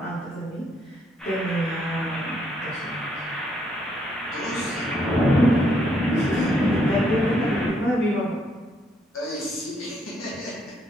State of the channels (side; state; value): both; normal; correlation 0.73